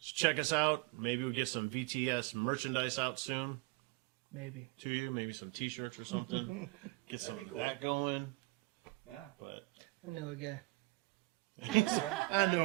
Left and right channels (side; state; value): left; quieter; 24.6 dB